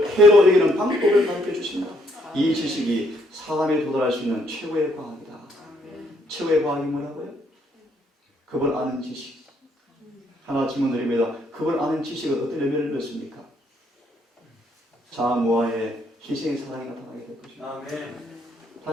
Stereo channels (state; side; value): normal; both; correlation 0.70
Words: 해로 여기는 방법을 가르쳐 주십니다. 이 지식이 사람에 도달할 수 있는 최고의 과학이다. 최고의 과학이 뭐라고요? 그걸 아는 지식. 하나 질문 드립니다. 그걸 아는 지식은 어떤 의미를 넣습니까? 자아무아의 희생의 사랑이 나타나게 될 것입니다. 아멘.